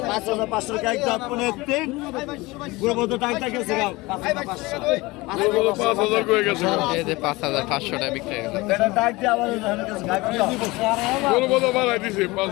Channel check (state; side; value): quieter; right; 22.0 dB